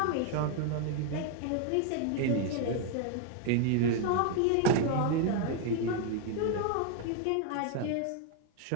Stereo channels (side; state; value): both; different; correlation 0.00